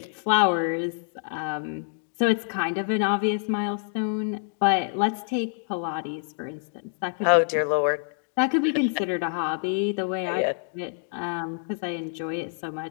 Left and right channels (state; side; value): silent; right; 60 dB below the other